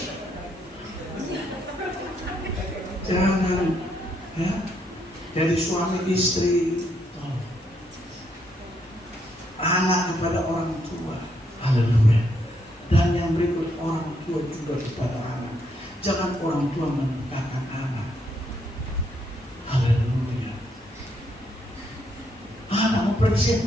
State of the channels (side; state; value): both; normal; correlation 0.75